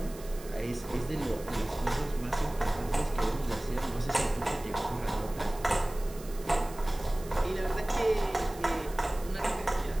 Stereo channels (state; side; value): noise; right; hiss, 18 dB below the sound